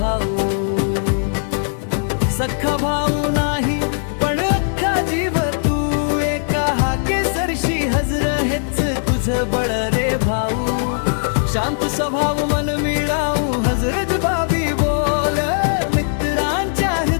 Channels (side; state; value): right; silent; digital silence